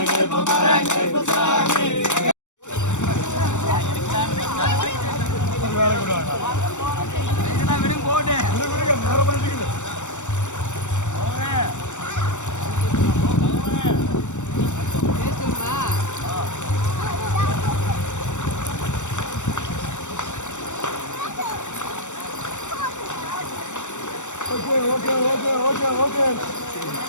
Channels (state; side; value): late; right; 0.85 ms